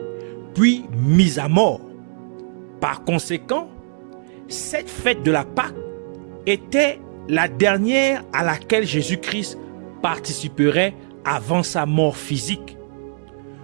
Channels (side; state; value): left; silent; digital silence